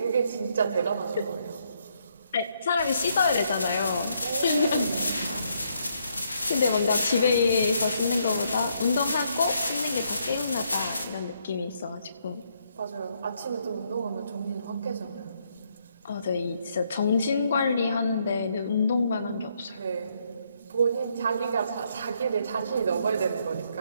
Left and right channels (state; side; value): inverted; both; correlation -0.73